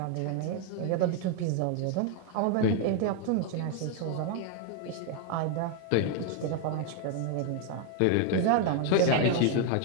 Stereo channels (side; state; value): both; different; correlation 0.01